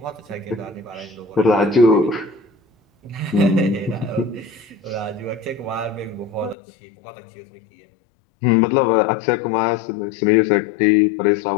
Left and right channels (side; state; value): right; drops out; at 6.6 s